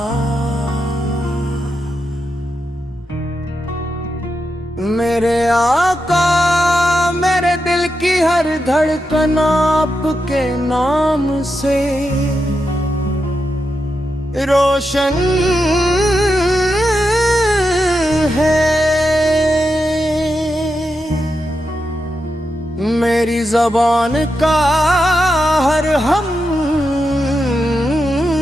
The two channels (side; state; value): both; normal; correlation 0.86